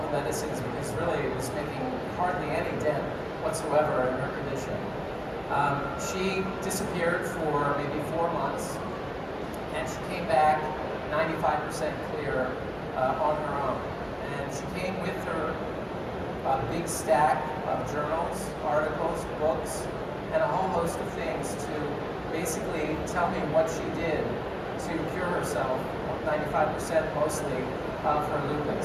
the medicines because really it was making hardly any dent whatsoever in her condition. She disappeared for maybe 4 months, and she came back 95% clear on her own. And she came with her big stack of journals, articles, books, and a whole host of things to basically tell me what she did to cure herself, 95% mostly, of her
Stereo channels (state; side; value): identical; both; correlation 1.00